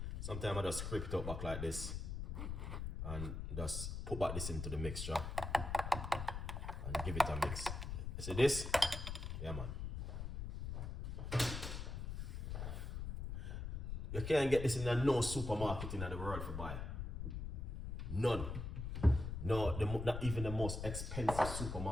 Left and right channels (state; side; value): noise; left; rumble, 4 dB below the sound